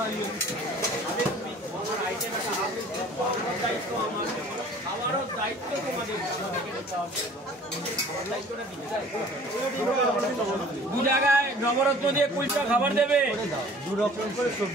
আইটেম একটা হাফ প্লেট দায়িত্ব আমার। আমারও দায়িত্ব তোমাদের। দু জায়গায় নবরত্ন দিয়ে কুলচা খাবার দেবে। দু রকম করে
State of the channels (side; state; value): both; normal; correlation 0.49